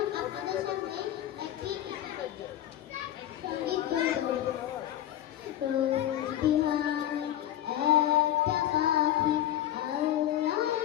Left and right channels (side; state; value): right; quieter; 12.0 dB